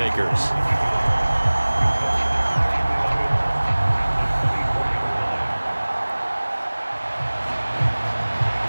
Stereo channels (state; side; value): inverted; both; correlation -1.00